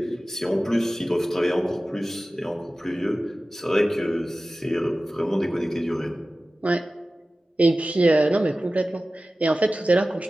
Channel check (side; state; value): both; normal; correlation 0.96